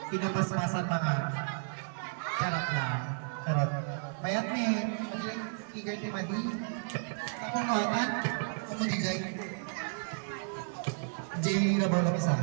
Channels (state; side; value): silent; left; digital silence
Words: Pinapasmasan mga. Charot lang. Charot. Mayat ni, madilang figure ti Madi. Ako nuwatan, ako digay. Jay na ba lang isa?